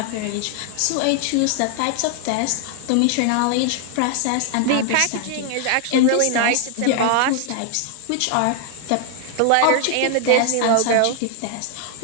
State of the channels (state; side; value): different; both; correlation 0.00